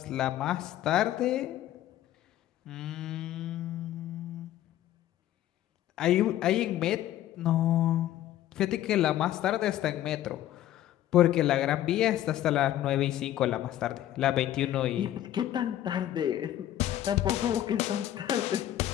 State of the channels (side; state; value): right; quieter; 12.8 dB